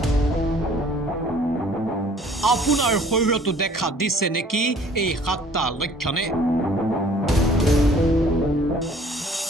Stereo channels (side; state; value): both; normal; correlation 0.55